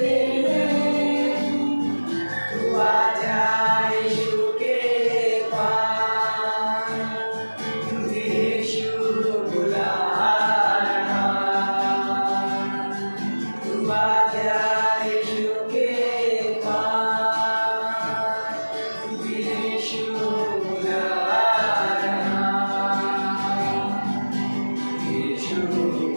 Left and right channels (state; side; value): inverted; both; correlation -1.00